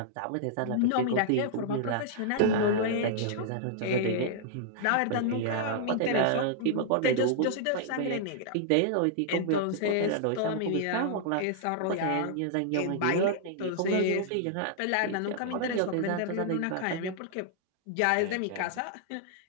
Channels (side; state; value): both; different; correlation -0.01